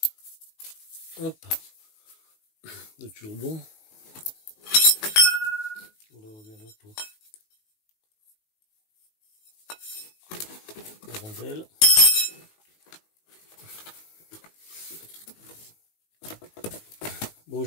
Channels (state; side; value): late; right; 19 ms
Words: Hop. Le turbon. Là, on revient là pour la rondelle. Bon,